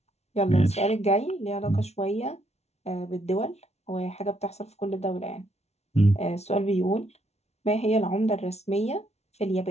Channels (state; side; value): late; right; 0.31 ms